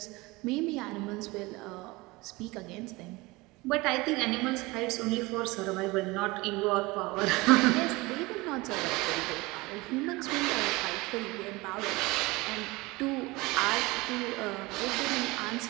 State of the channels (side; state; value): left; quieter; 22.7 dB